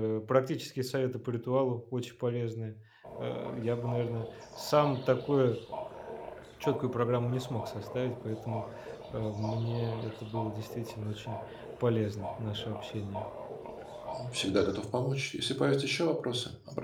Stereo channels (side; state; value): both; identical; correlation 1.00